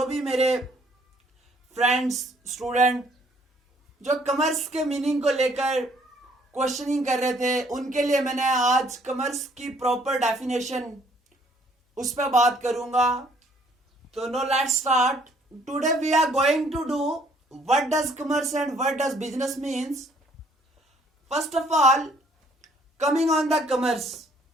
भी मेरे फ्रेंड्स स्टूडेंट जो कॉमर्स के मीनिंग को लेकर क्वेश्चनिंग कर रहे थे, उनके लिए मैंने आज कॉमर्स की प्रॉपर डेफिनेशन उस पर बात करूंगा. तो now let's start. Today we are going to do what does commerce and what does business means. First of all, coming on the commerce,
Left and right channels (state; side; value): normal; both; correlation 0.62